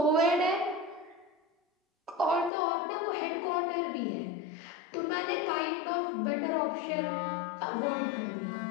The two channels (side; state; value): right; drops out; at 2.5 s